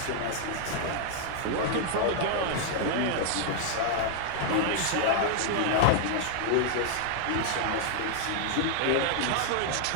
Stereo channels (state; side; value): different; both; correlation 0.00